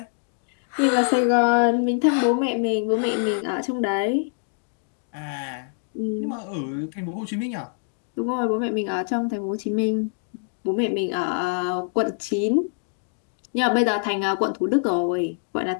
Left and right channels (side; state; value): right; silent; digital silence